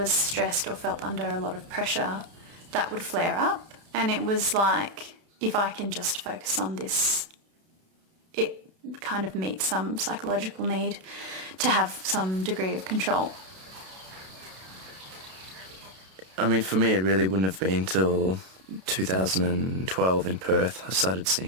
stressed or felt under a lot of pressure, that would flare up, and it was like, if I can just focus on this, it kind of meets some psychological need to have some degree of control. I mean, for me, it really wouldn't have been till 2012 in Perth. I started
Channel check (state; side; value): late; left; 32 ms